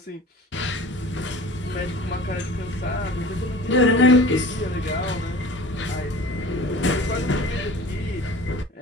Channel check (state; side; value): normal; both; correlation 0.41